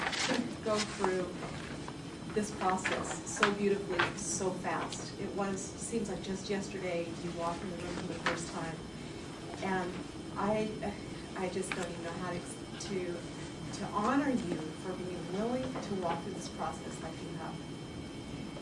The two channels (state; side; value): identical; both; correlation 1.00